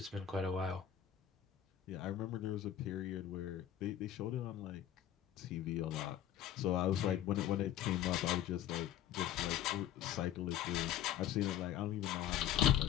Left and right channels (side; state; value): right; quieter; 11.0 dB